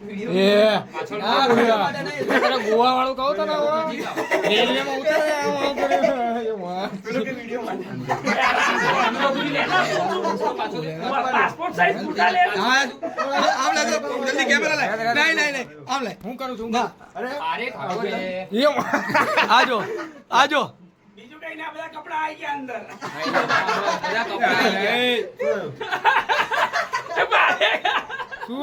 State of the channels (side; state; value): both; identical; correlation 1.00